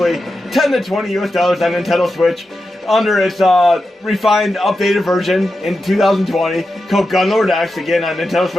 10 to 20 US dollars on Nintendo Switch under its refined, updated version in 2020 called Gunlord X, again on Nintendo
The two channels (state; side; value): normal; both; correlation 0.90